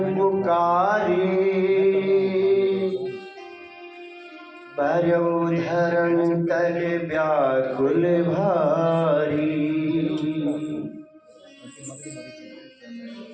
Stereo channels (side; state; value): both; identical; correlation 1.00